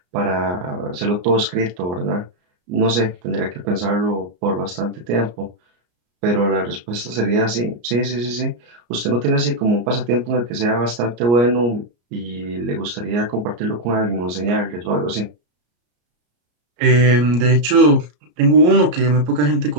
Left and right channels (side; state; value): left; late; 34 ms